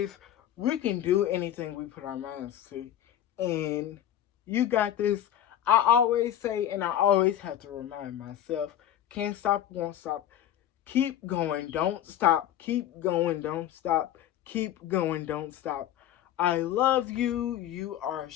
We can do anything we put our minds to. And you got this. I always say, and I always have to remind myself, can't stop, won't stop. Keep going. Don't stop. Keep going. Don't stop. Keep going. Don't stop. I love you. You are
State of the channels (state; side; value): quieter; right; 11.3 dB